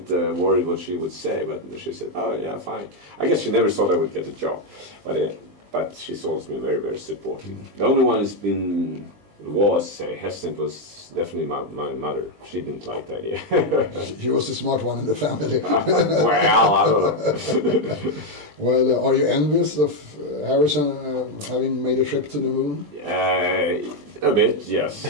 worried what she would say, but she said, oh yeah, fine. I guess she never thought I would get a job, but she's always been very, very supportive. The only one who's been hesitant was definitely my mother. She didn't like the idea. She was the smart one in the family. Well, I don't know. Well, are you envious of Harrisson having made a trip to the moon? A bit, yes.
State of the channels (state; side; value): late; left; 20 ms